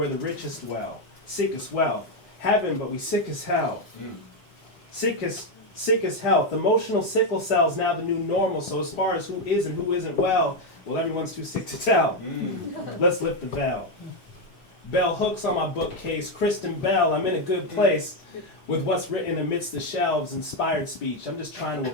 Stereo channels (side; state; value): right; late; 4.3 ms